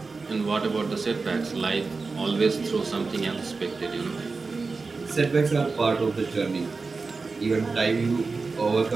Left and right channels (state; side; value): quieter; left; 4.2 dB